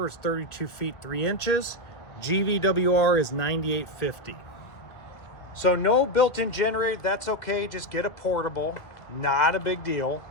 is 32 feet 3 inches. GVWR is 9850. So no built-in generator, that's okay. Just get a portable, not a big deal.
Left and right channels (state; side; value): late; right; 2.0 ms